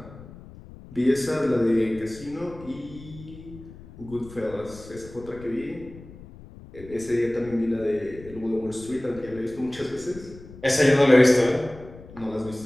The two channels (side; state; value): left; noise; rumble, 18 dB below the sound